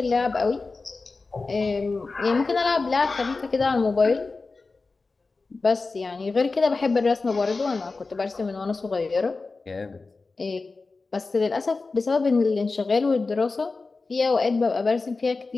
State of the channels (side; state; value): right; quieter; 3.9 dB